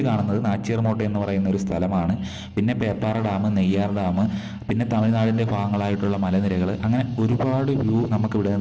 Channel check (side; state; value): both; identical; correlation 1.00